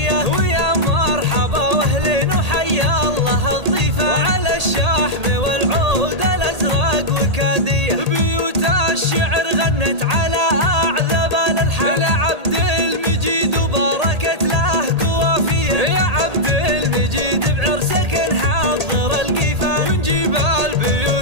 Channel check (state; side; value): late; left; 1.8 ms